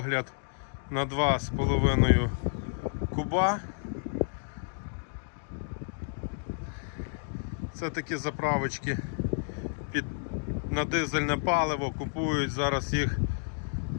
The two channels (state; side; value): silent; right; digital silence